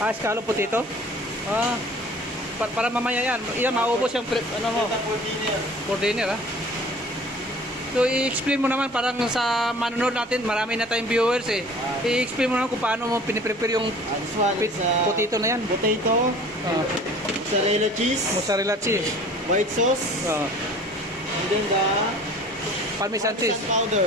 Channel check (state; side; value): normal; both; correlation 0.47